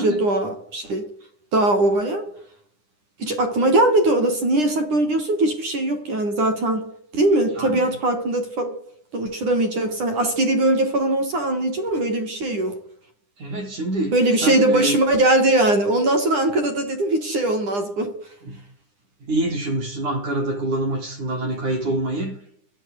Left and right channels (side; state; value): left; late; 9.9 ms